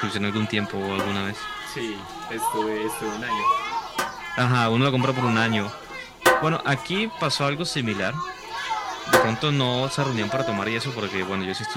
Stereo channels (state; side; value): identical; both; correlation 1.00